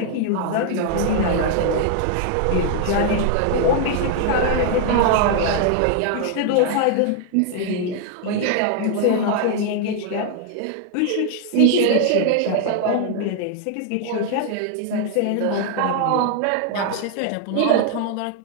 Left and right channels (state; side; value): different; both; correlation 0.00